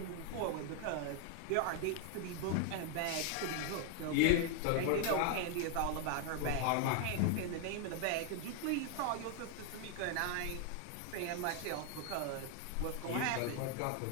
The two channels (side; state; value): both; different; correlation 0.00